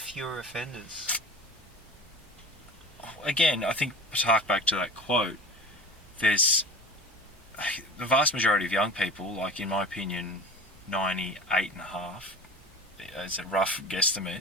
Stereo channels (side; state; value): both; normal; correlation 0.36